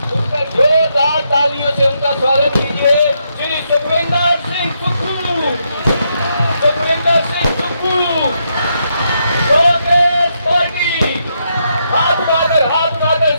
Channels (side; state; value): both; inverted; correlation -0.79